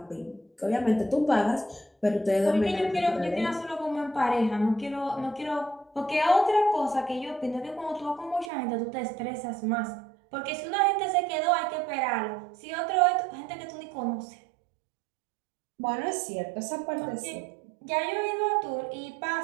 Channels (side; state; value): left; drops out; at 8.5 s